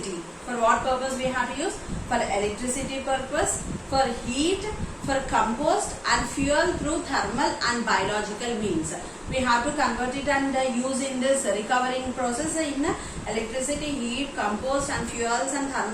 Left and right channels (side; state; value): both; identical; correlation 1.00